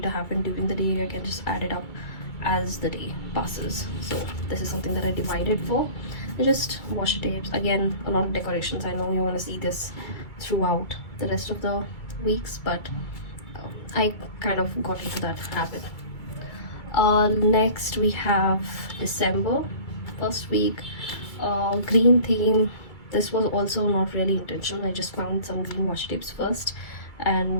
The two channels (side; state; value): right; late; 2.3 ms